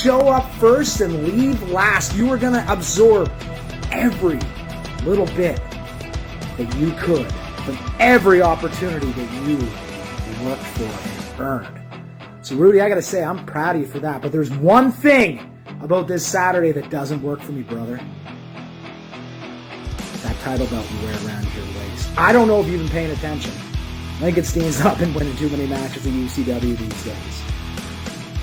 up first and leave last. You were going to absorb every little bit that you could from every opportunity that you worked for and earned. So, Rudy, I got to say, I'm proud of you for that. But there's one thing about this Saturday that doesn't work for me, brother. That title belt you wear around your waist. I don't know if you've been paying attention. I think it stands up and winning too many matches in UCW these days.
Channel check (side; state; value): both; identical; correlation 1.00